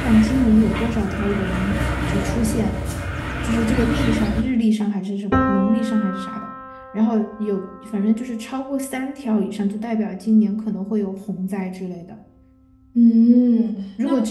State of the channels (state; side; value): identical; both; correlation 1.00